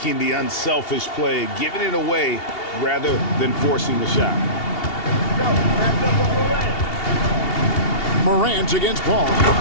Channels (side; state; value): right; late; 2.8 ms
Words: the unselfish play, giving it away rather than forcing the shot. Morant against Paul.